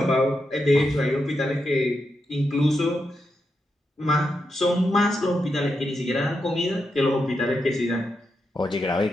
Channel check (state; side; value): normal; both; correlation 0.85